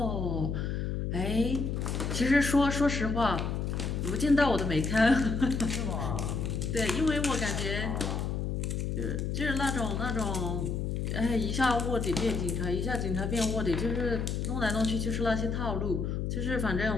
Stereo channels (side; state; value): left; noise; hum, 1 dB below the sound